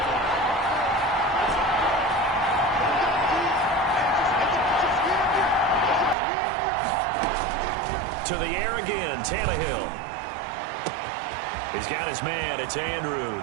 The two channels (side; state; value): left; drops out; at 6.2 s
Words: To the air again, Tannehill. He's got his man, it's